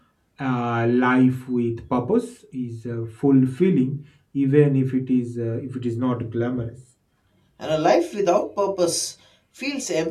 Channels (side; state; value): both; identical; correlation 1.00